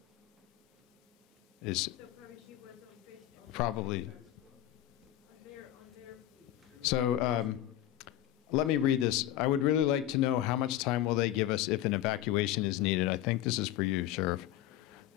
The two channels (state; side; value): quieter; right; 13.0 dB